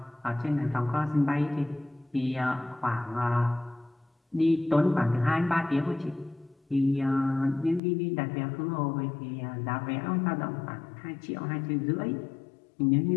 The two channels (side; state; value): right; drops out; at 7.8 s